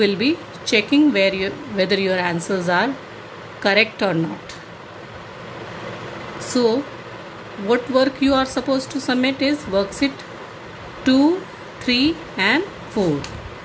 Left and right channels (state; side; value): identical; both; correlation 1.00